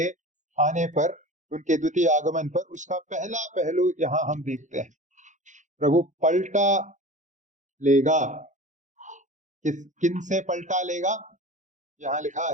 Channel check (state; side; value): late; left; 0.36 ms